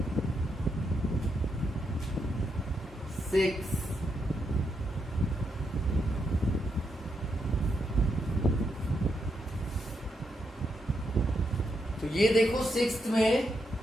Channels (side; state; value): both; normal; correlation 0.81